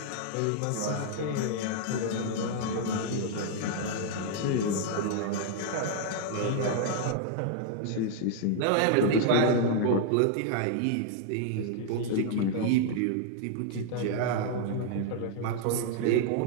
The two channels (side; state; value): both; different; correlation 0.00